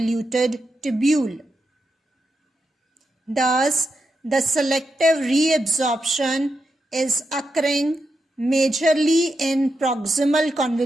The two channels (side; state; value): both; normal; correlation 0.86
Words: tubule. Thus, the selective reabsorption is occurring majorly in proximal